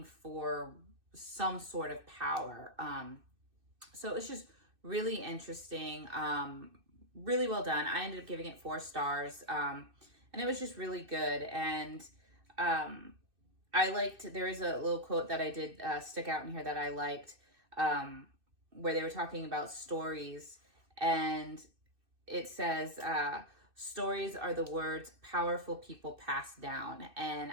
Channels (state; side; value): late; left; 2.6 ms